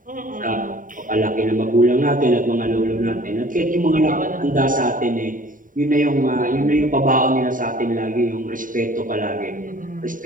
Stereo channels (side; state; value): left; late; 0.39 ms